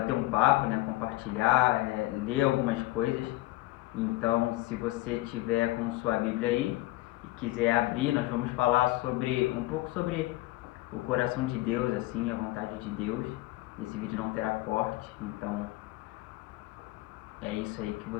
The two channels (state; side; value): quieter; right; 18.5 dB